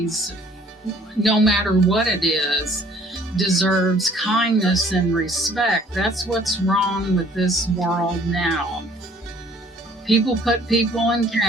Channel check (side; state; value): both; normal; correlation 0.57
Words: no matter what it is, deserves kindness and respect. That's what's wrong with this world now. people put people in